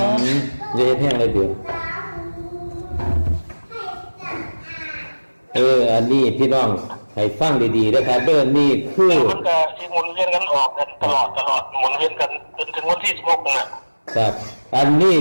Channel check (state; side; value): inverted; both; correlation -1.00